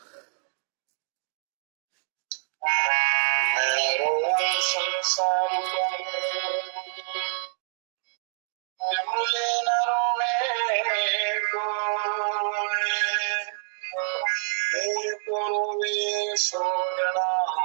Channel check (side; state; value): left; silent; 60 dB below the other